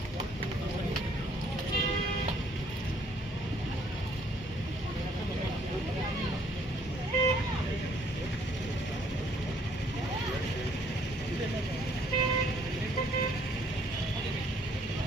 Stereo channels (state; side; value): normal; both; correlation 0.63